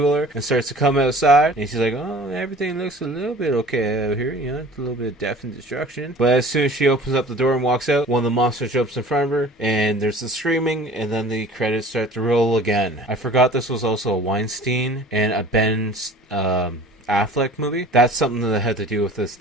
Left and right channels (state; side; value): normal; both; correlation 0.45